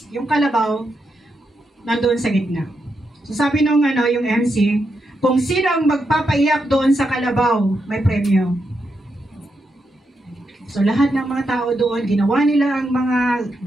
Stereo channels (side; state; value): both; normal; correlation 0.83